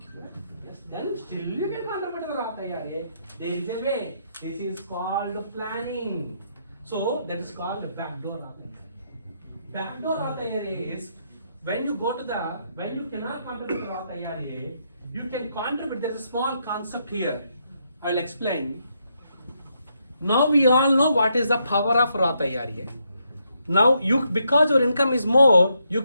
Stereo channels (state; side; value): inverted; both; correlation -0.77